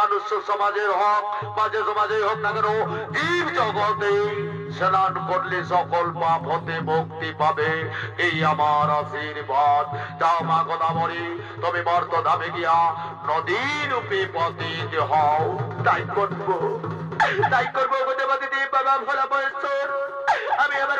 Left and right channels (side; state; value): both; identical; correlation 1.00